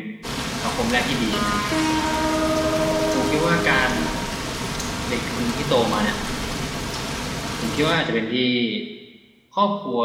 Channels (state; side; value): identical; both; correlation 1.00